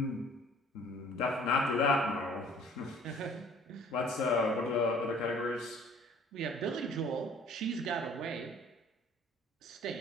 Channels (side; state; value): both; normal; correlation 0.53